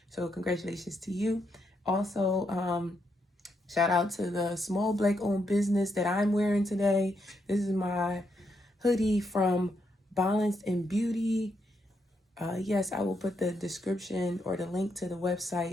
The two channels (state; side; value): normal; both; correlation 0.80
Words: So congratulations to you. Also, shout out to the small Black owned business that I'm wearing today. This is my hoodie from Balance and Beauty. Yes, I will put the description or the link to the